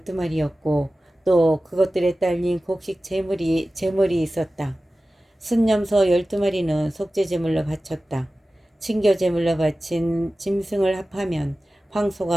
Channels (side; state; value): both; normal; correlation 0.95